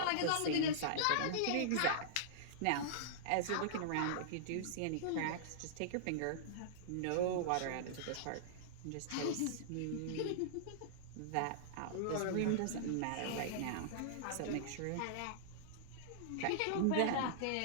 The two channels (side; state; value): both; different; correlation -0.02